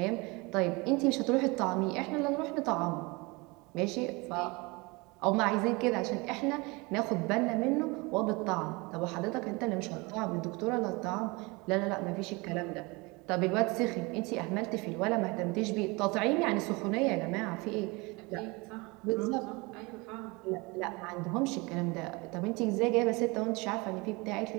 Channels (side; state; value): left; quieter; 25.9 dB